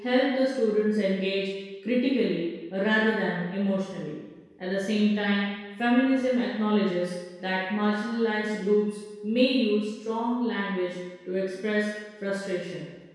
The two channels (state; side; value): identical; both; correlation 1.00